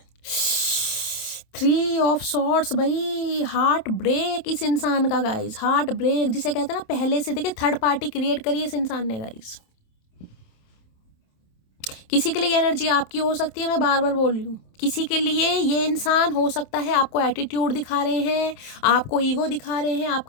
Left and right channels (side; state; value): right; late; 27 ms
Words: 3 ऑफ सॉर्ड्स भाई, हार्ट ब्रेक इस इंसान का गाइस, हार्ट ब्रेक जिसे कहते हैं ना, पहले से देखिए थर्ड पार्टी क्रिएट करी इस इंसान ने गाइस। किसी के लिए एनर्जी आपकी हो सकती है, मैं बार बार बोल रही हूँ, किसी के लिए ये इंसान हो सकता है आपको एटीट्यूड दिखा रहे हैं, आपको ईगो दिखा रहे हैं,